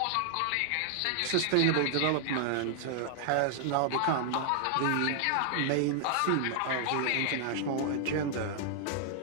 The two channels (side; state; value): both; different; correlation 0.00